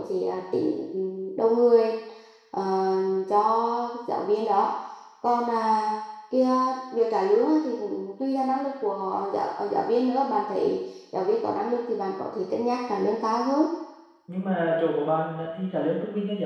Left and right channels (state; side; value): identical; both; correlation 1.00